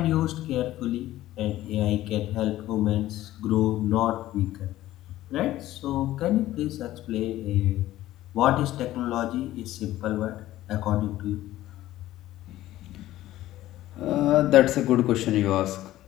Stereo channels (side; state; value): right; quieter; 14.9 dB